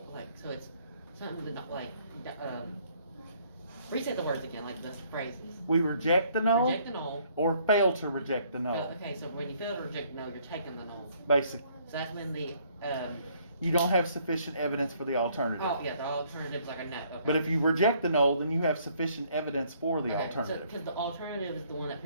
so it's something with reset the words again, like the phrases. We reject the null, Reject the null. or fail to reject the null. Okay, so when you fail to reject the null, you're taking the null. Basically, So that's when the you don't have sufficient evidence for the alternative. the alternative's like a no. Okay. But if you reject the null, then you have sufficient evidence for the Okay, alternative. because the alternative is the one that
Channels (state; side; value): inverted; both; correlation -0.64